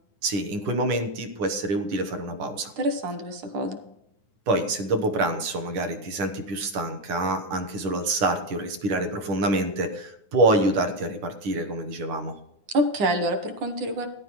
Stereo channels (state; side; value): late; left; 9.7 ms